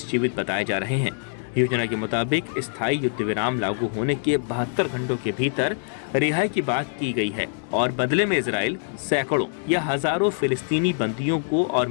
जीवित बताए जा रहे हैं। योजना के मुताबिक स्थायी युद्ध विराम लागू होने के 72 घंटों के भीतर रिहाई की बात की गई है और बदले में इजराइल सैकड़ों या हजारों फिलिस्तीनी बंदियों को और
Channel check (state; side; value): silent; right; digital silence